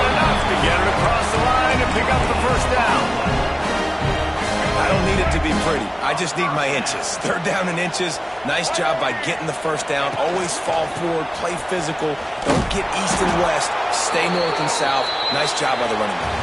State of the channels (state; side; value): identical; both; correlation 1.00